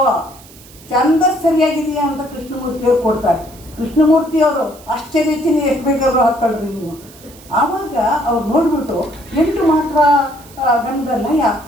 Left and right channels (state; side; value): noise; right; hiss, 22 dB below the sound